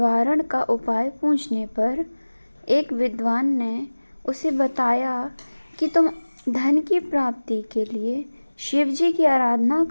का उपाय पूछने पर एक विद्वान ने उसे बताया कि तुम धन की प्राप्ति के लिए शिव जी की आराधना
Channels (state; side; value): inverted; both; correlation -1.00